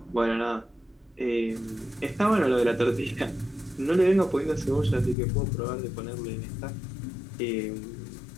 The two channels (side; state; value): right; drops out; at 5.2 s